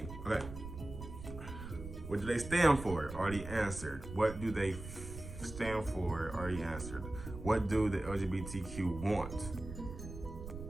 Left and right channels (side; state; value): right; noise; rumble, 10 dB below the sound